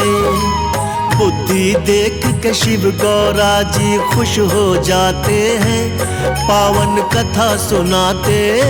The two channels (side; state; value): both; identical; correlation 1.00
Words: बुद्धि देख के शिव गौरा जी खुश हो जाते हैं, पावन कथा सुनाते